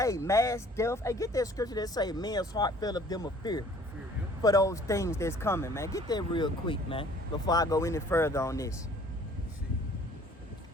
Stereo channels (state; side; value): normal; both; correlation 0.54